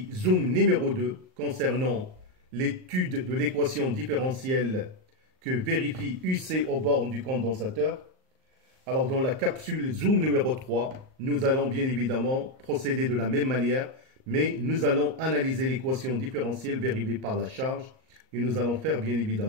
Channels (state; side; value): late; left; 38 ms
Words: Zoom numéro 2 concernant l'étude de l'équation différentielle que vérifie UC aux bornes du condensateur. Alors dans la capsule Zoom numéro 3, nous allons bien évidemment procéder de la même manière, mais nous allons analyser l'équation différentielle vérifiée par la charge et nous allons faire bien